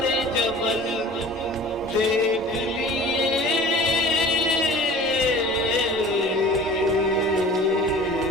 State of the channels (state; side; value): normal; both; correlation 0.43